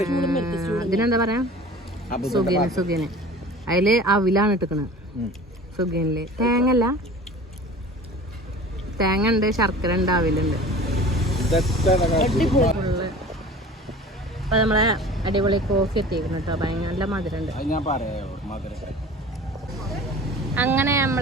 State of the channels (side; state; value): both; normal; correlation 0.41